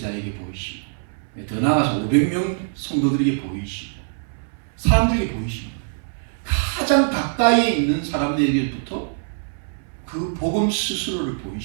보이시고 더 나아가서 500명 성도들에게 보이시고 사람들에게 보이시고 가장 가까이에 있는 사람들에게부터 그 복음 스스로를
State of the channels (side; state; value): left; silent; 63 dB below the other